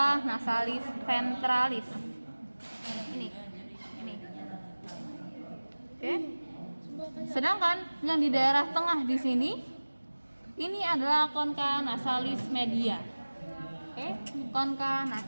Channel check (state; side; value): inverted; both; correlation -1.00